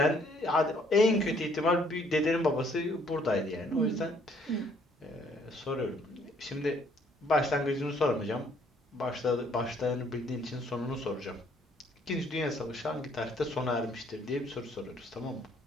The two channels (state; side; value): normal; both; correlation 0.64